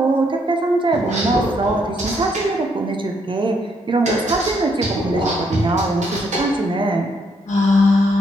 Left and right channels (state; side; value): normal; both; correlation 0.73